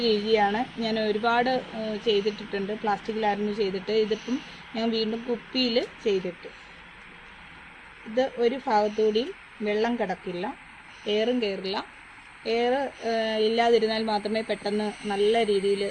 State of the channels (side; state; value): both; identical; correlation 1.00